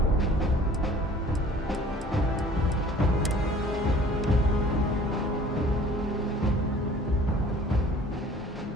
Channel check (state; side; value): normal; both; correlation 0.50